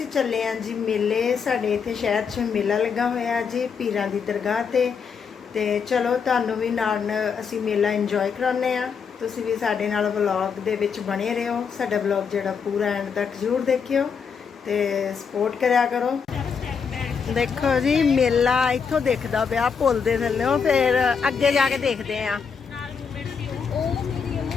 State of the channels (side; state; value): right; quieter; 6.2 dB